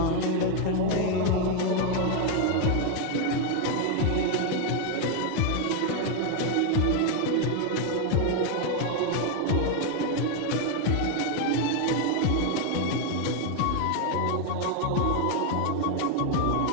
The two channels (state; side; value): different; both; correlation 0.01